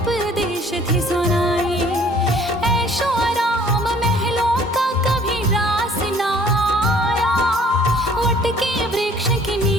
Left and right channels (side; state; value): both; normal; correlation 0.56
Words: थे सुनाए। ऐशो आराम महलों का कभी रास ना आया। वट के वृक्ष के